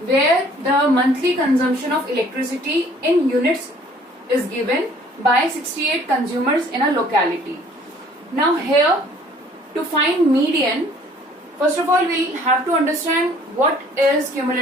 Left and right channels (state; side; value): normal; both; correlation 0.56